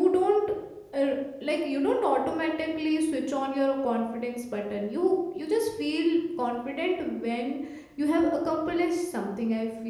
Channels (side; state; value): both; identical; correlation 1.00